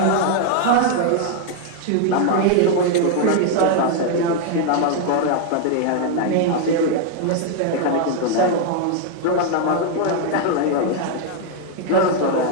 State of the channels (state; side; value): different; both; correlation 0.00